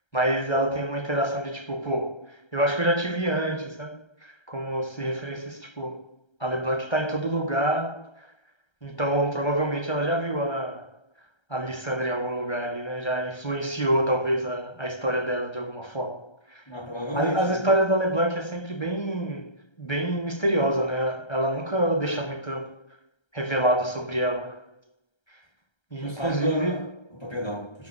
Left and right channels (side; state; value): right; late; 1.3 ms